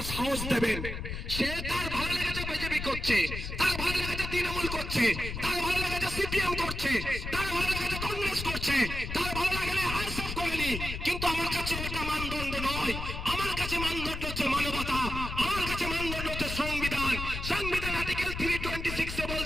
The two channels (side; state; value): left; noise; rumble, 6 dB below the sound